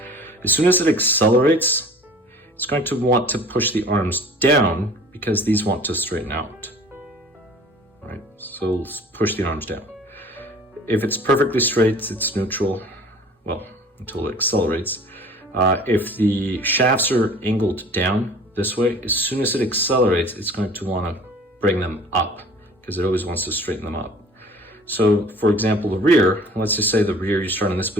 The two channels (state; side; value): normal; both; correlation 0.47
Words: As soon as it accelerates, it's going to want to push the arms down because these want to straighten out. Right, so push the arms down. If it's perfectly straight, it's neutral, well, until it accelerates. If the shafts are angled down this way, as soon as it accelerates, it's going to want to bring them up because it always wants to straighten them up. So for example, the rear, let's just say the rear, you start in this